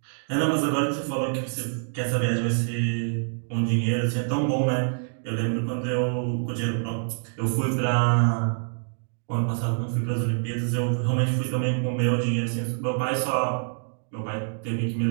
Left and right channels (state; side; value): silent; left; 61 dB below the other